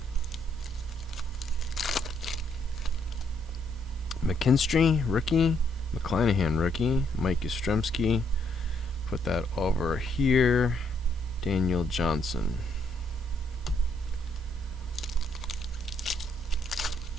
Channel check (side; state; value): both; normal; correlation 0.71